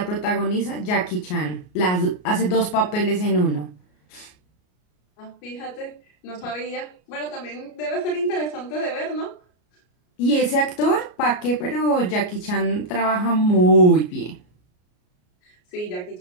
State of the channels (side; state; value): right; late; 33 ms